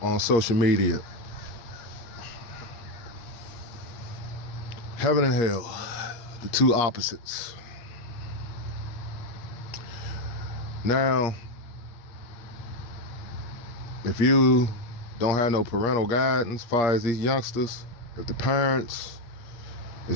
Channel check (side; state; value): right; late; 8.5 ms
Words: on social media. Heaven and hell, the two opposites. Now, if you don't have no parental guidance as far as these youngsters, if the parents